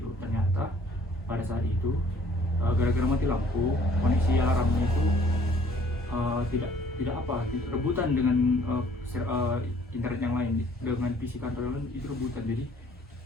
Ternyata pada saat itu gara-gara mati lampu, koneksi alarmnya itu tidak rebutan dengan internet yang lain, dengan PC kantor yang lain itu rebutan. Jadi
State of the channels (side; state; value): both; normal; correlation 0.58